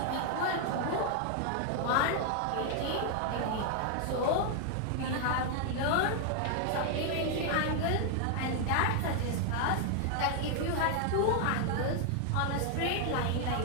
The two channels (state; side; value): different; both; correlation 0.00